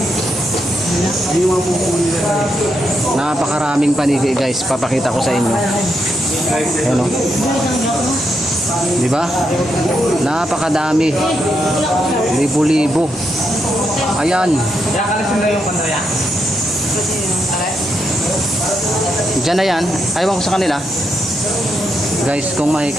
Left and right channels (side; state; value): both; normal; correlation 0.81